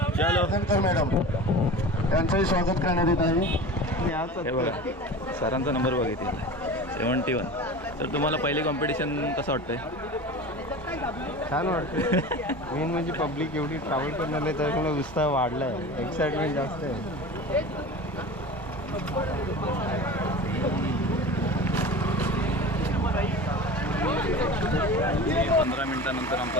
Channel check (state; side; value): normal; both; correlation 0.34